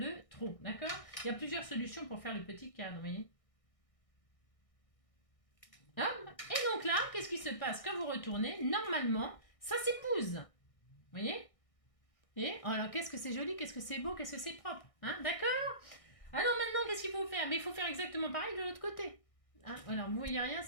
trou, d'accord? Il y a plusieurs solutions pour faire le petit cadre, vous voyez? Et donc là, qu'est-ce qui se passe? Quand vous retournez, normalement, ça s'épouse. Vous voyez? Et alors, qu'est-ce que c'est joli, qu'est-ce que c'est beau, qu'est-ce que c'est propre. Hein? D'accord? Alors maintenant, qu'est-ce qu'il faut faire? Mais il faut faire exactement pareil de l'autre côté. Hein? Alors, vous voyez rien,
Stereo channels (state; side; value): late; right; 1.6 ms